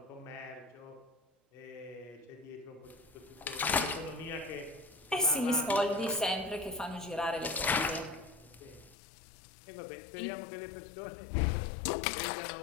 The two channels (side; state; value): right; drops out; at 9.0 s